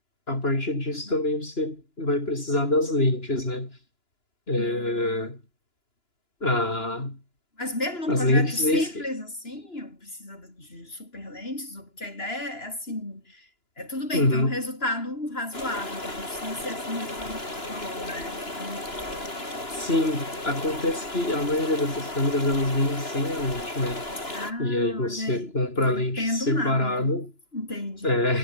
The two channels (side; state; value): right; late; 2.9 ms